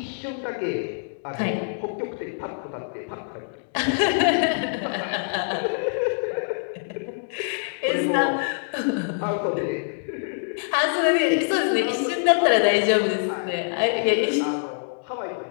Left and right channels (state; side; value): silent; right; digital silence